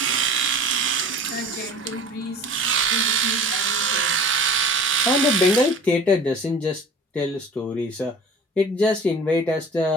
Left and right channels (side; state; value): both; normal; correlation 0.42